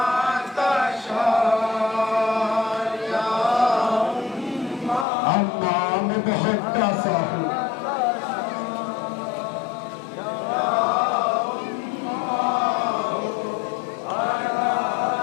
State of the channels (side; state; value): right; drops out; at 5.1 s